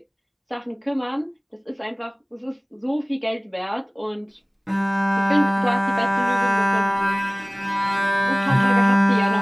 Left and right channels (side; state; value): both; identical; correlation 1.00